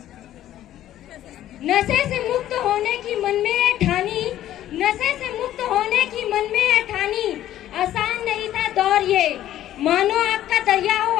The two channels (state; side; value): quieter; right; 12.6 dB